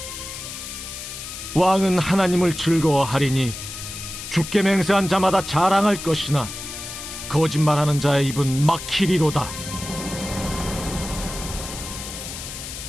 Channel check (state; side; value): noise; left; hiss, 9 dB below the sound